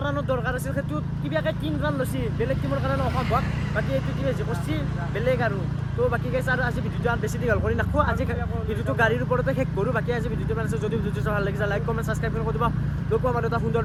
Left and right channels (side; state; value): both; identical; correlation 1.00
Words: ৰানৰ দৰকাৰ আছিল সেইটো কিবাকৈ 3 ৰান লৈছে বেলেগ টিমৰ কাৰণে অসম্ভৱ বাকী এইটো টিমে যি কৰিছে বেলেগ আৰু তো বাকী গাইছে আৰু আজি ভিডিঅ'টো আৰু বেছি দীঘল কৰি নাখোঁ আজি ভিডিঅ'টো গাড়ীৰ ওপৰতে শেষ কৰোঁ বাকী আজি ভিডিঅ'টো মানে যদি ভিডিঅ'টো ভাল লাগিছে লাইক কমেণ্ট ছাবস্ক্ৰাইব কৰি দিব লগ পাম আৰু এটা সুন্দৰ